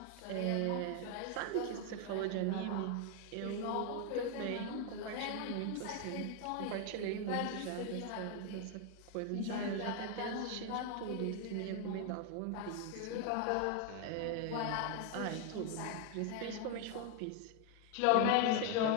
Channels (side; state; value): both; different; correlation 0.01